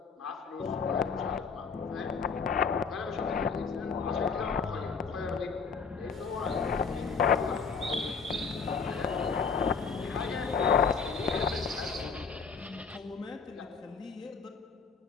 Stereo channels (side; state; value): right; quieter; 5.5 dB